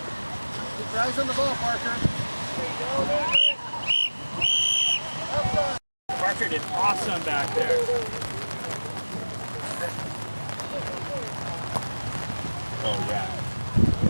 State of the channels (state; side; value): inverted; both; correlation -1.00